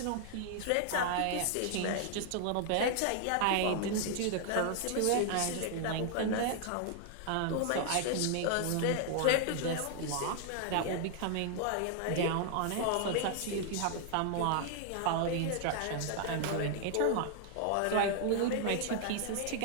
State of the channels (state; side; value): different; both; correlation 0.00